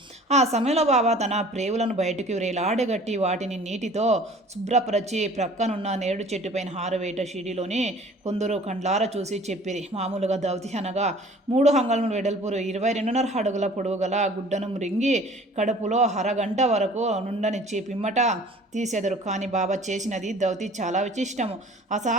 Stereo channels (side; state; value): both; normal; correlation 0.49